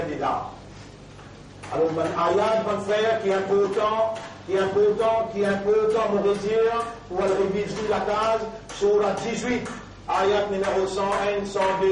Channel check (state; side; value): identical; both; correlation 1.00